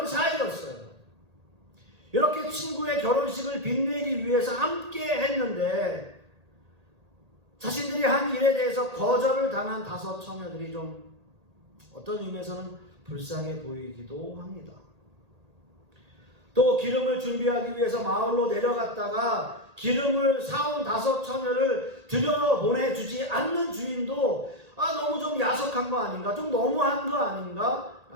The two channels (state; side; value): late; left; 1.8 ms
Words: 사이였어요. 이렇게 친구의 결혼식을 빛내기 위해서 함께 했는데 자신들이 한 일에 대해서 거절을 당한 5 처녀들이 좀 어떤 의미에서는 불쌍해 보이기도 합니다. 또 기름을 준비하기 위해서 마을로 내려갔다가 기름을 사온 5 처녀를 들여보내주지 않는 주인도 너무 좀 야속한 거 아닌가, 좀 너무한 거 아닌가